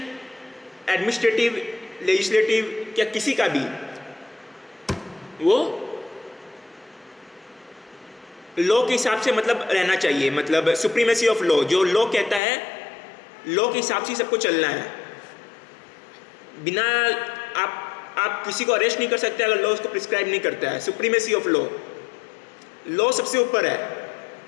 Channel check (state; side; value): drops out; right; at 12.4 s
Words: एडमिनिस्ट्रेटिव, लेजिस्लेटिव या किसी का भी, वो लॉ के हिसाब से मतलब रहना चाहिए। मतलब सुप्रीमेसी ऑफ लॉ, जो लॉ कहता है, लॉ के हिसाब से सबको चलना है। बिना आप किसी को अरेस्ट नहीं कर सकते अगर लॉ उसको प्रिस्क्राइब नहीं करता है। सुप्रीमेसी ऑफ लॉ, लॉ सबसे ऊपर है,